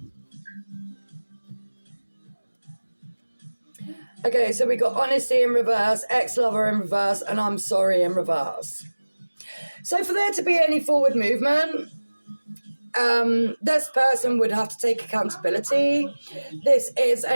Okay, so we got honesty in reverse, ex-lover in reverse, and I'm sorry in reverse. So for there to be any forward movement, this person would have to take accountability. This is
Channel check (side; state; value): both; inverted; correlation -1.00